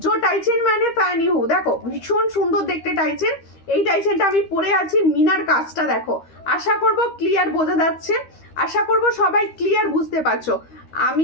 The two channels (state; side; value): late; right; 13 ms